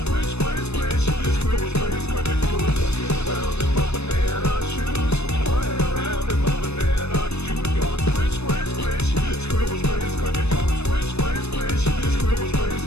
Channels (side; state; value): right; late; 0.80 ms